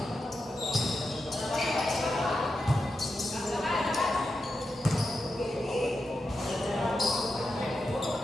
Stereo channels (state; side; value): normal; both; correlation 0.88